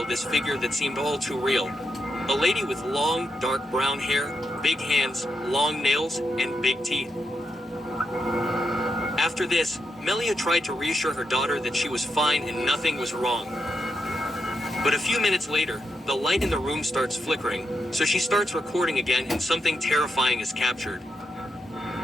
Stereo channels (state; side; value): normal; both; correlation 0.83